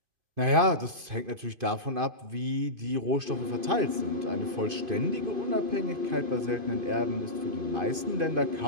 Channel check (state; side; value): late; left; 2.5 ms